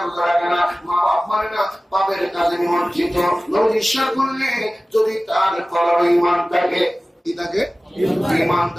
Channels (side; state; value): both; normal; correlation 0.97